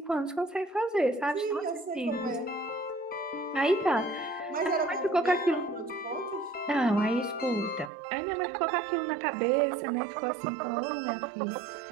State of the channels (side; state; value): left; drops out; at 7.9 s